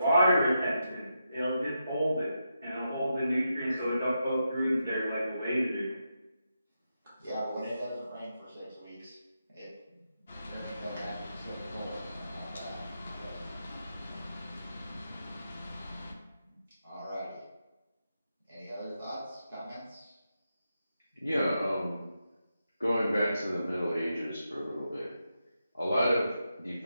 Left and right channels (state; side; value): inverted; both; correlation -0.86